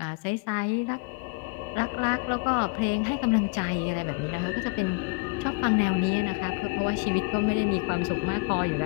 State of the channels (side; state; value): right; quieter; 29.1 dB